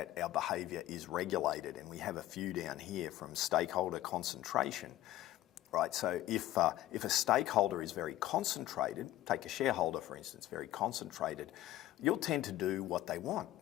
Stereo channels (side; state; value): right; quieter; 14.6 dB